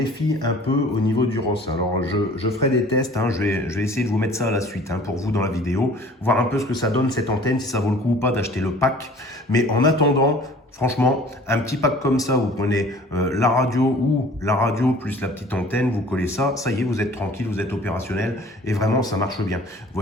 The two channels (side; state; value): both; normal; correlation 0.49